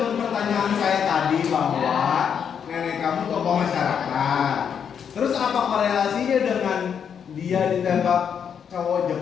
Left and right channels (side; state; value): right; quieter; 7.6 dB